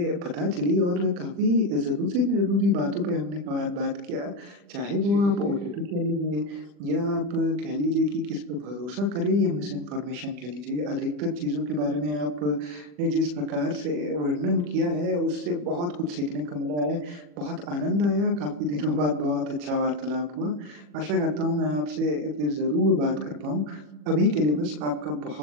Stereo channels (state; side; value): late; left; 40 ms